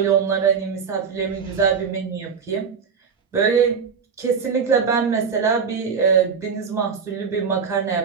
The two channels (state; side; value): quieter; left; 6.1 dB